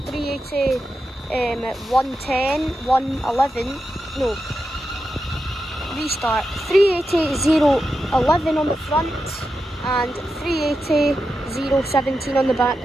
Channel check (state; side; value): normal; both; correlation 0.89